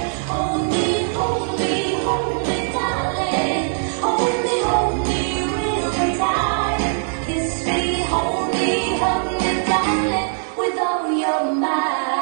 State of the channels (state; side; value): silent; left; digital silence